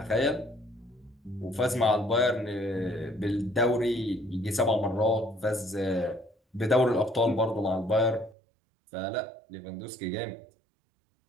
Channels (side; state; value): left; drops out; at 8.3 s